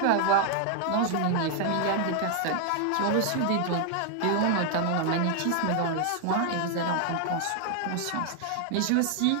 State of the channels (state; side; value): different; both; correlation 0.00